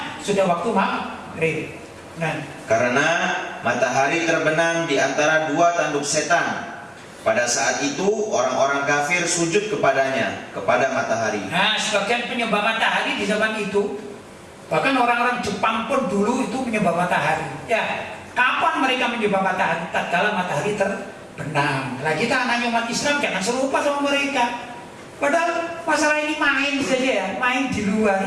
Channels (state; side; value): identical; both; correlation 1.00